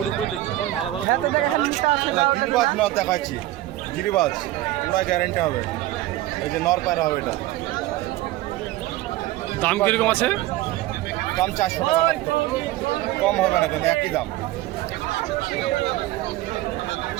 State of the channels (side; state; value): left; quieter; 16.1 dB